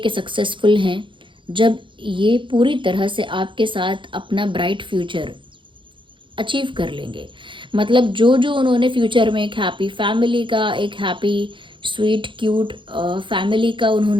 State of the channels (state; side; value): late; left; 0.24 ms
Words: सक्सेसफुल हैं, जब ये पूरी तरह से आपके साथ अपना ब्राइट फ्यूचर अचीव कर लेंगे। मतलब जो जो उन्होंने फ्यूचर में एक हैप्पी फैमिली का, एक हैप्पी स्वीट क्यूट फैमिली का